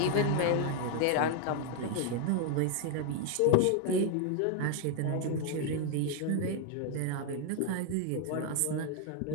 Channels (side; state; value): both; different; correlation 0.00